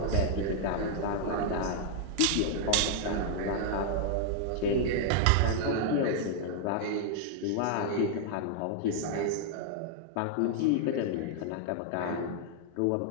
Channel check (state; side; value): different; both; correlation -0.01